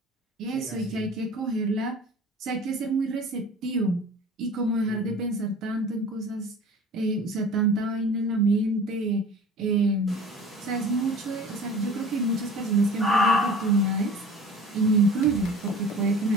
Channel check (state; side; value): normal; both; correlation 0.42